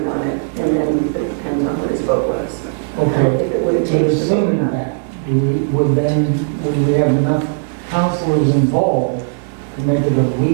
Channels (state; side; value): silent; left; digital silence